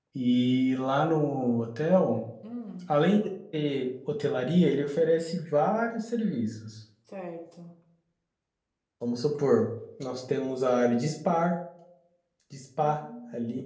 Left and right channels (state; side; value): identical; both; correlation 1.00